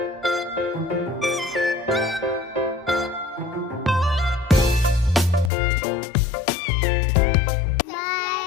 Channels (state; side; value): drops out; right; at 5.5 s